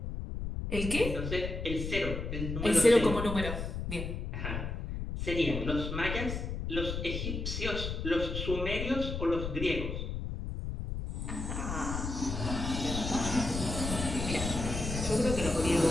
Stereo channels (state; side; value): noise; left; rumble, 4 dB below the sound